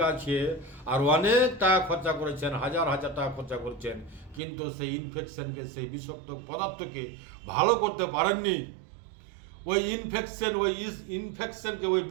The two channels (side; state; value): left; drops out; at 4.4 s